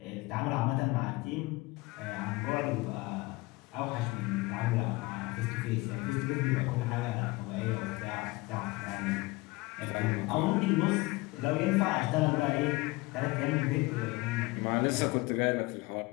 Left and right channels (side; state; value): right; quieter; 22.8 dB